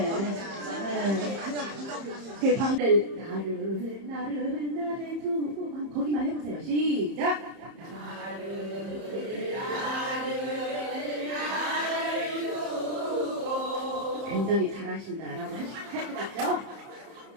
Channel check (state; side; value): late; left; 30 ms